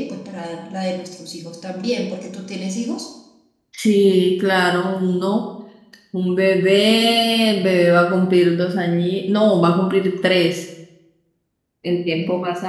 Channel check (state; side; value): identical; both; correlation 1.00